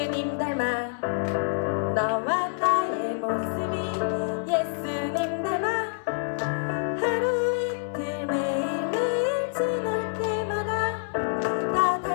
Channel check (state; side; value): silent; right; 60 dB below the other